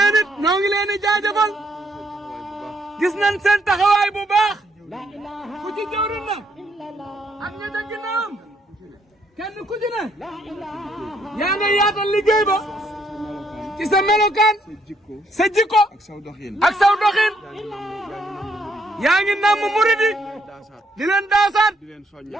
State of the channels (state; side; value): normal; both; correlation 0.71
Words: it ñoo ngi leen di jaajëfal. gis nañ seen taxawaay bu baax. ku ci jëwriñ na. ak ña ca ginnaawam. kenn ku ci ne. yaa nga yaatal liggéey ba. ci sa melokaan. sa jikko. ak saw doxin. ak saw doxin. yaa ngi namm murid yi. di leen daasaat. di